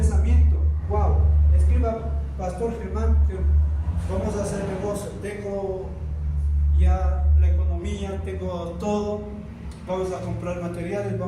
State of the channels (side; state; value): both; identical; correlation 1.00